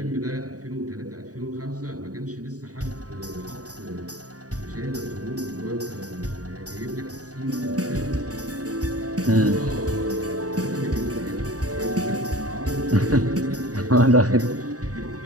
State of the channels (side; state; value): left; late; 0.67 ms